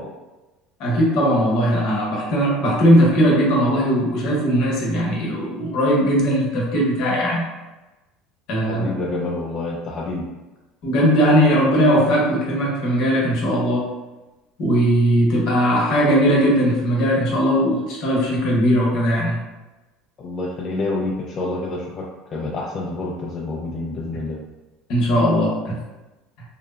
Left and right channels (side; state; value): both; normal; correlation 0.48